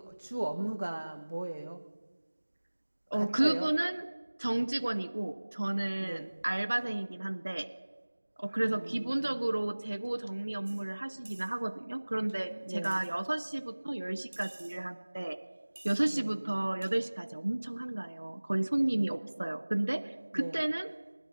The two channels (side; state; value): both; inverted; correlation -1.00